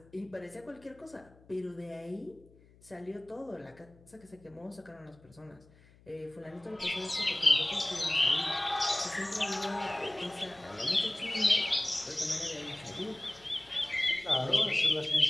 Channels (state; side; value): noise; left; hum, 26 dB below the sound